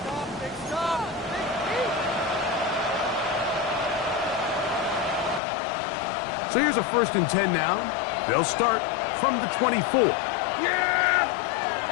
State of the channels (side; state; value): right; drops out; at 5.4 s